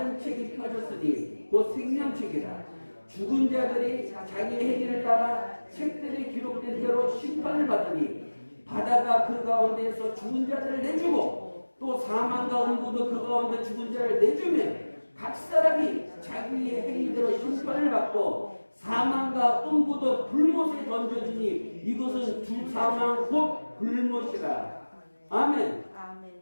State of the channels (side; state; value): both; inverted; correlation -1.00